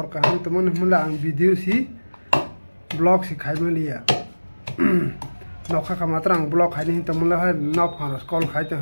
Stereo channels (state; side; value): inverted; both; correlation -1.00